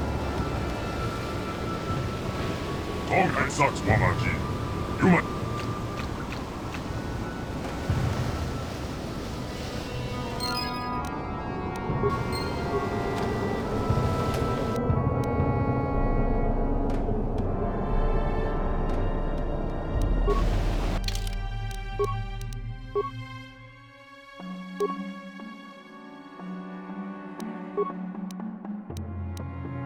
Tonghai Saks Wamaji. Human.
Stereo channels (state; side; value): identical; both; correlation 1.00